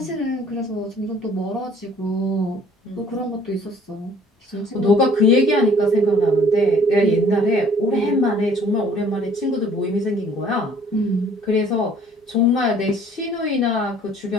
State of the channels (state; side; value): normal; both; correlation 0.55